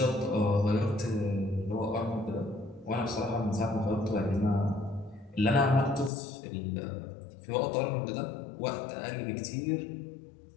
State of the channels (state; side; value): drops out; right; at 6.1 s